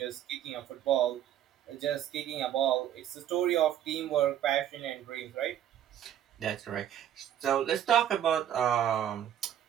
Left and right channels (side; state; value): left; quieter; 10.7 dB